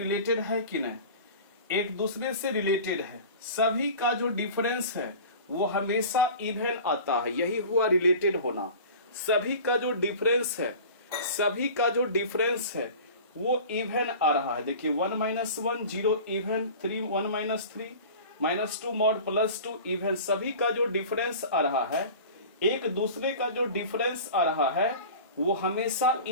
है कि नहीं? एक दूसरे से रिलेटेड है। सभी का जो डिफरेंस है वो हमेशा इवन आता है, यही हुआ रिलेटेड होना। सभी का जो डिफरेंस है, सभी का जो डिफरेंस है वो इवन आ रहा है। देखिए 1 minus 1 0 even, 1 minus 3 minus 2 mod plus 2 even. सभी का जो डिफरेंस आ रहा है, एक दूसरे का जो डिफरेंस आ रहा है वो हमेशा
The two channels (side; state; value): both; inverted; correlation -0.38